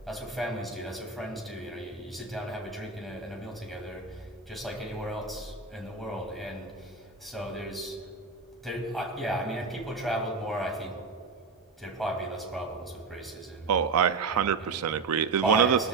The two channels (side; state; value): left; quieter; 4.3 dB